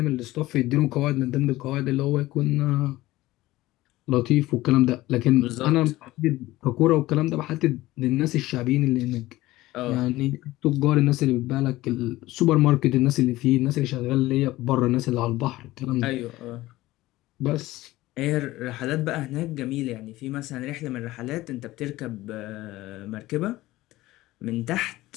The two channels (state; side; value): quieter; right; 17.5 dB